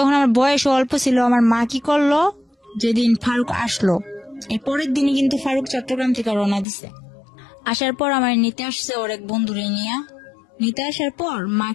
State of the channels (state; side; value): drops out; right; at 6.7 s